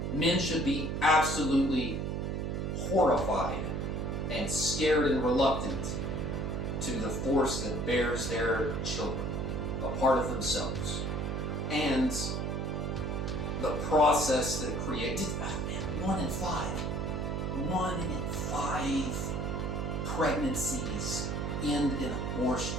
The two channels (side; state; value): right; noise; hum, 1 dB below the sound